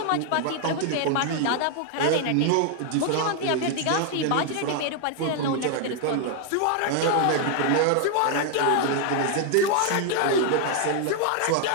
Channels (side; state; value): both; different; correlation 0.00